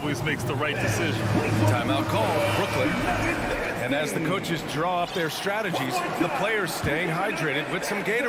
makes the right decision. Timeout call, Brooklyn. And as the coaches draw up their strategies, the players staying hydrated with some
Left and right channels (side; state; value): both; identical; correlation 1.00